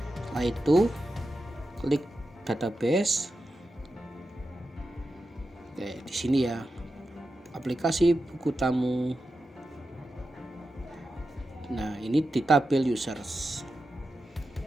Setelah itu klik database. Oke, di sini ya, aplikasi buku tamu. Nah, ini di tabel users.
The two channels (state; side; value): normal; both; correlation 0.90